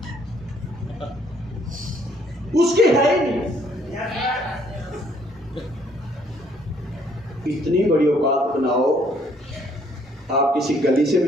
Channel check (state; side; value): normal; both; correlation 0.65